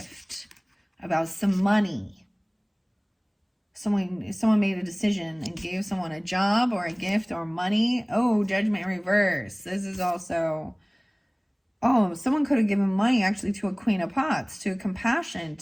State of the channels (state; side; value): identical; both; correlation 1.00